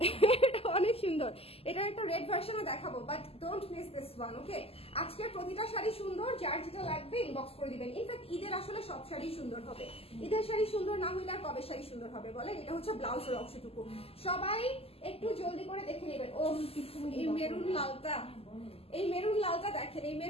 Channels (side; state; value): right; late; 0.29 ms